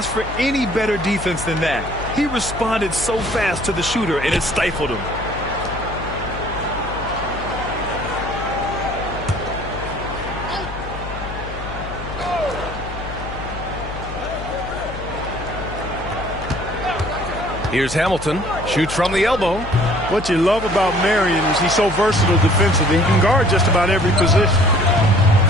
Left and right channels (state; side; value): noise; left; hum, 10 dB below the sound